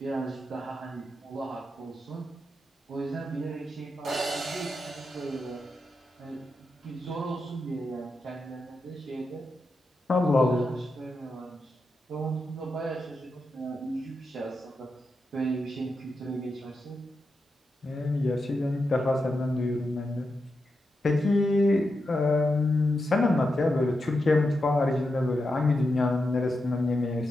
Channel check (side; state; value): both; normal; correlation 0.87